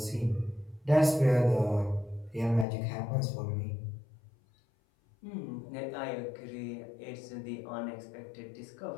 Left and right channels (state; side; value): drops out; right; at 2.7 s